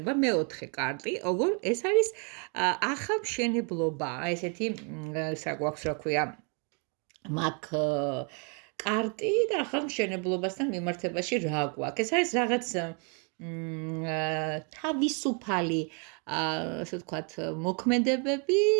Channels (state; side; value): quieter; left; 37.8 dB